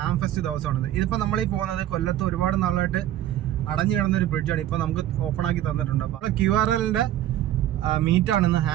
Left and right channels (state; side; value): quieter; left; 12.7 dB